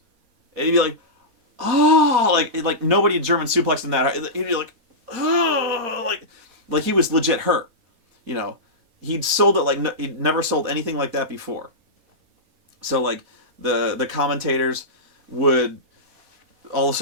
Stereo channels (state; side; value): late; left; 4.3 ms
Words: And he'd be like, oh, like nobody had German suplexed in that. He'd be like, oh, like he was legit hurt. You know, he'd sold it like he'd never sold anything like that before. So like the commentators would all of a